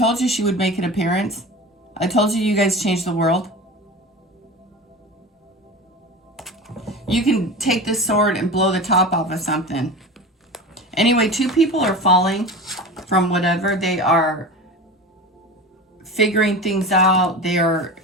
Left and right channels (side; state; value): both; normal; correlation 0.31